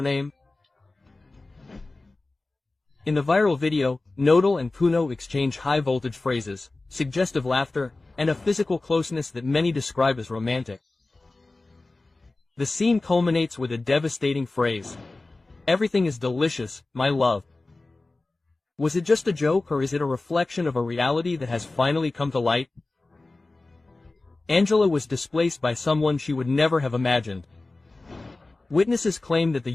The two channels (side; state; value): right; quieter; 3.2 dB